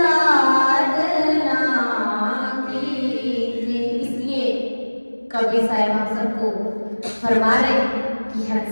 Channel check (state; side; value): inverted; both; correlation -1.00